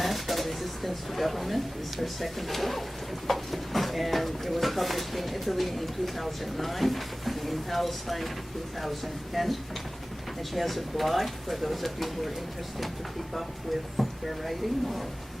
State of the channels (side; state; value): both; normal; correlation 0.97